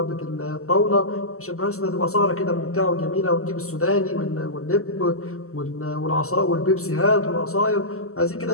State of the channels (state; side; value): late; right; 0.63 ms